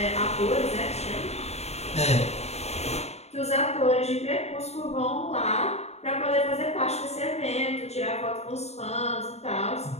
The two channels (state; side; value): late; right; 0.31 ms